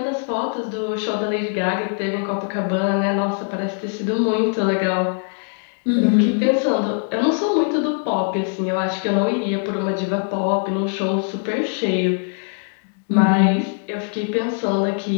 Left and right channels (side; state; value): right; silent; 56 dB below the other